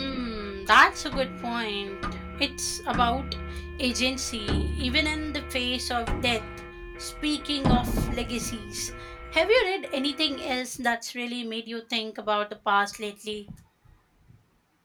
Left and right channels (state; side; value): identical; both; correlation 1.00